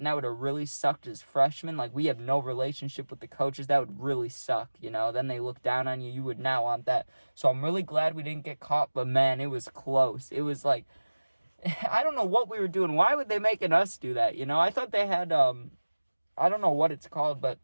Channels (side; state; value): both; inverted; correlation -1.00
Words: that would have really sucked as freshmen. Like, we have no relationship with the coaches. That would really suck, Then they look down on you. You would not want that. So I'm really glad we didn't get caught. But man, it was close. It was like, I don't know what we were doing. Why would they making us do that? I thought they had, I don't know what it's called, but